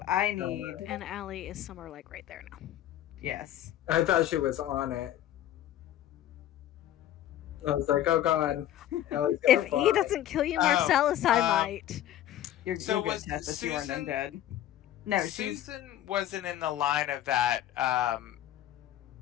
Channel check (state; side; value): quieter; right; 12.4 dB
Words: I need... And Allie is somewhere like right there now. Yes. I thought she was on it. I was like, oh god. If E doesn't kill you, Marcellus, I might. You're good, Tessa. You aren't undead. No, Susan wasn't in the line of that